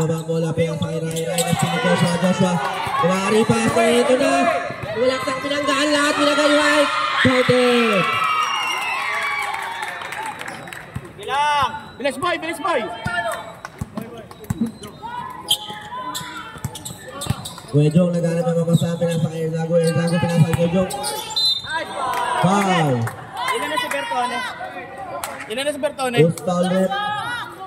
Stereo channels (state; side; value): identical; both; correlation 1.00